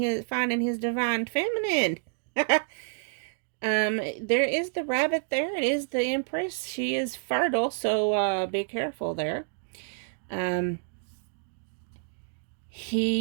his divine feminine. There is the rabbit there. It is the Empress. She is fertile, so, be careful there.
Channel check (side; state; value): left; silent; digital silence